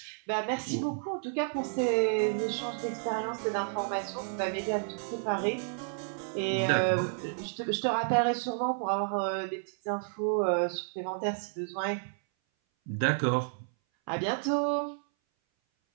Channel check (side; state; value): left; silent; 57 dB below the other